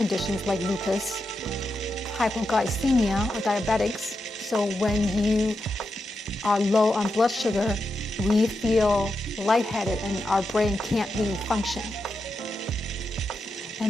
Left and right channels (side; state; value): both; normal; correlation 0.87